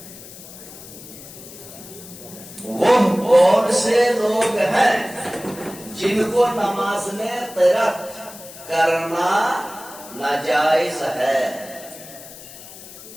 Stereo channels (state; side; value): noise; left; hiss, 16 dB below the sound